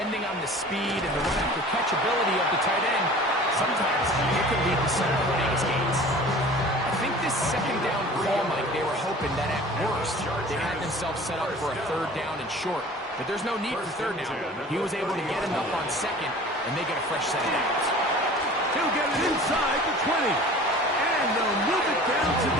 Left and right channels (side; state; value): both; normal; correlation 0.43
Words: on the speed and the run after catch ability of the tight end, sometimes it can lead to some of the biggest gains. I think this second down call, Mike, they were hoping that at worst they had themselves set up for a third down and short. But there's no need for third down. He was able to get enough on second, and they get a fresh set of downs. He'll get it inside the 20. And they'll move it down to